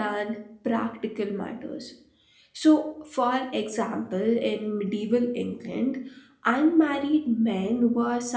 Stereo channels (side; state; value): both; identical; correlation 1.00